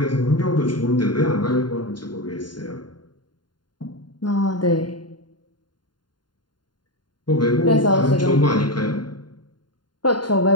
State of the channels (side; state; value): right; late; 0.71 ms